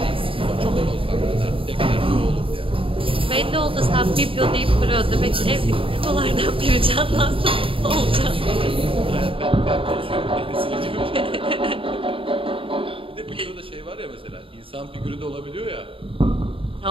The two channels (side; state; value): left; late; 0.26 ms